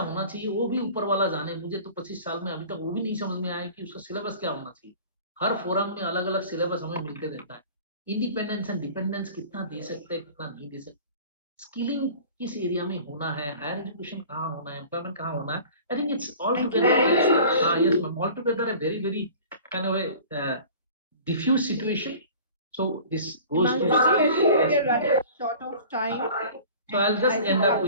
होना चाहिए, वो भी ऊपर वाला जाने। मुझे तो 25 साल में अभी तक वो भी नहीं समझ में आया कि उसका सिलेबस क्या होना चाहिए। हर फोरम में अलग अलग सिलेबस हमें मिलते रहता है। इंडिपेंडेंस एंड डिपेंडेंस कितना दे सकते हैं, कितना नहीं दे सकते, स्किलिंग किस एरिया में होना है, हायर एजुकेशन कहाँ होना है, एम्प्लॉयमेंट कहाँ होना है। I think it's all together, yes ma'am, all together a very very kind of a diffuse situation. So this goes to we're running short of time. So I'll just end up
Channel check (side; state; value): both; inverted; correlation -0.44